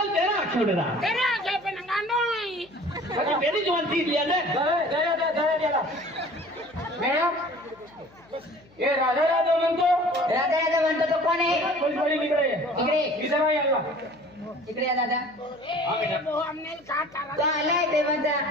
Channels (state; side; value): noise; left; hum, 28 dB below the sound